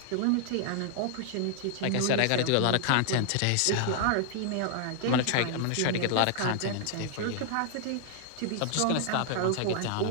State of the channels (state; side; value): different; both; correlation -0.01